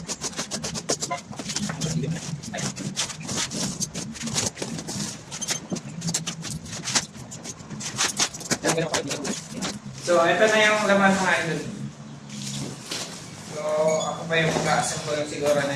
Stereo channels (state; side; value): identical; both; correlation 1.00